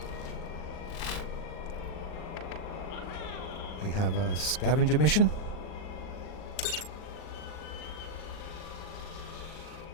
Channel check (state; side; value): late; right; 39 ms